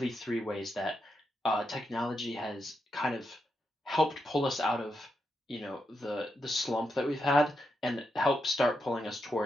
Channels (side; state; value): both; normal; correlation 0.84